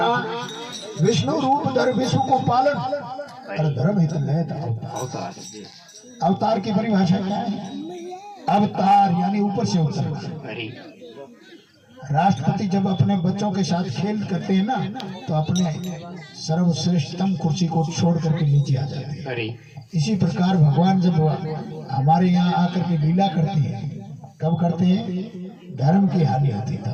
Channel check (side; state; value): both; identical; correlation 1.00